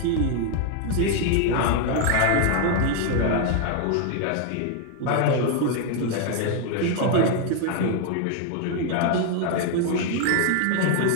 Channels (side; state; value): both; different; correlation 0.00